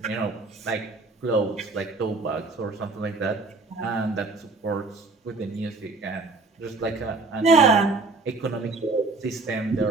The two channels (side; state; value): left; quieter; 3.6 dB